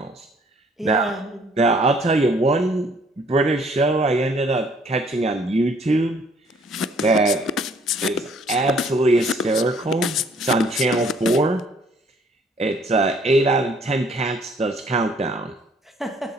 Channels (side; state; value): both; normal; correlation 0.61